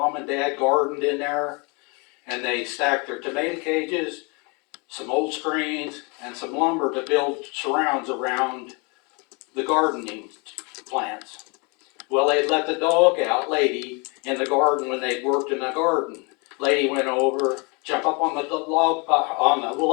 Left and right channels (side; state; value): right; quieter; 31.0 dB